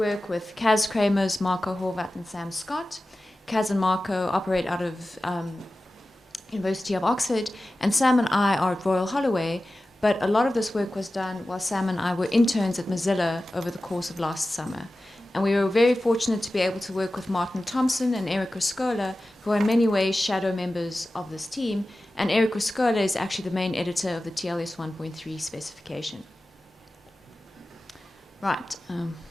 with Kaz Kramers, Marco Horvat, and Sam Scott. Kaz and Marco operate out of University of Oxford, and Sam and I are at Royal Holloway. But a lot of this work was done while Sam and I were interns at Mozilla over the course of last summer. And we were very fortunate to be able to work with Martin Thompson and Eric Riscola, who are in many ways shadow members of this team. And Eric Riscola is actually the main editor of the TLS 1.3 specification. Right.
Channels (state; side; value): normal; both; correlation 0.95